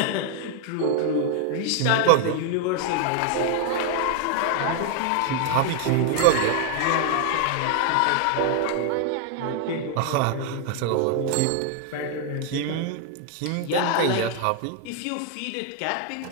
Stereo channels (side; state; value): both; different; correlation 0.00